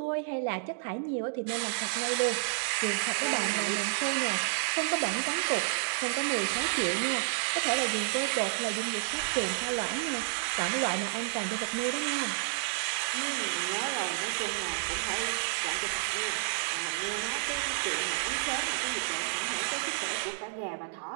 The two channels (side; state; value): left; silent; digital silence